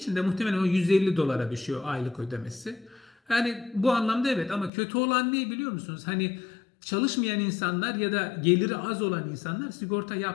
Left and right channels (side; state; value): right; drops out; at 4.7 s